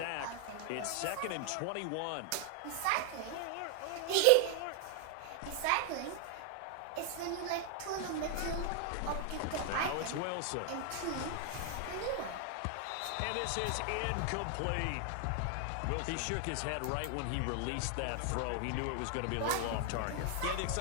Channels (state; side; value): different; both; correlation 0.00